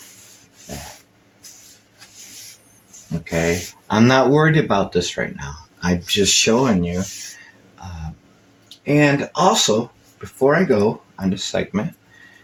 Okay. I'm not worried about this right now. I'm just showing you. And also, before I go on this segment,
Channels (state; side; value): identical; both; correlation 1.00